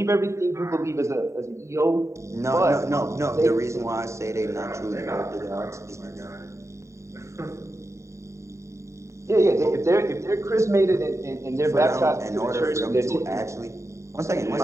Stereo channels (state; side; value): late; left; 0.14 ms